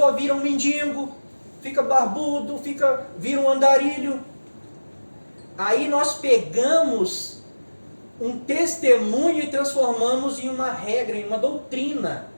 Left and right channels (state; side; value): inverted; both; correlation -1.00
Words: vira um mendigo, fica barbudo, vira um andarilho. Aí nós pegamos um testemunho e transformamos em uma regra, em uma doutrina.